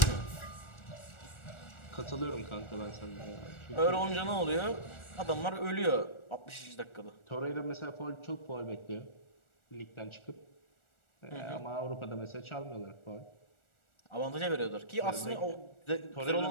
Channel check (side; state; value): right; late; 1.4 ms